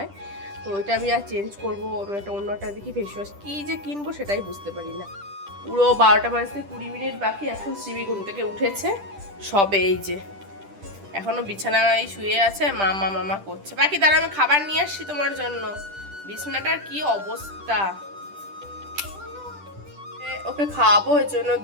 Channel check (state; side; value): late; left; 10 ms